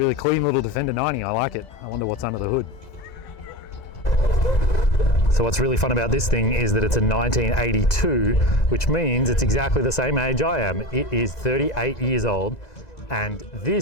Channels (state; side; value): late; right; 1.9 ms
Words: clean little Defender 90, I like it. I wonder what's under the hood. So what's really fun about this thing is that it's a 1982, which means it's exactly the same age I am. It is 38 years old, and